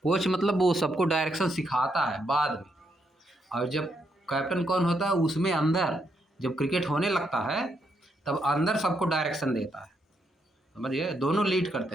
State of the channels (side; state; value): both; normal; correlation 0.78